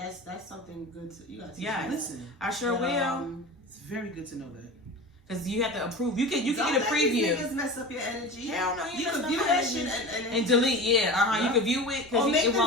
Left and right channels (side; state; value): both; normal; correlation 0.32